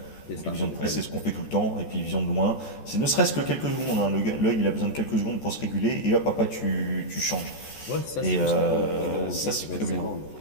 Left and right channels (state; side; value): late; right; 14 ms